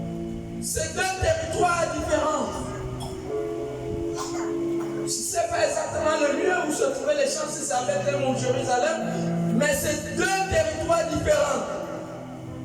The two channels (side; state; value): both; identical; correlation 1.00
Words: C'est deux territoires différents. Je ne sais pas exactement le lieu où se trouvaient les champs, si c'est à Bethléem ou Jérusalem, mais c'est deux territoires différents.